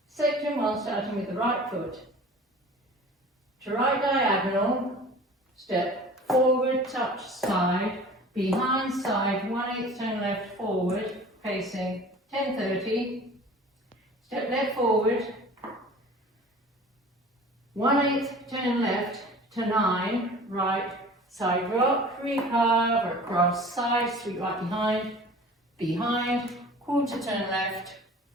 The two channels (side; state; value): both; normal; correlation 0.43